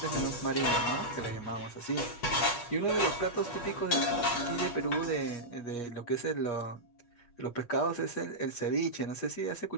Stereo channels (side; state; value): right; late; 8.4 ms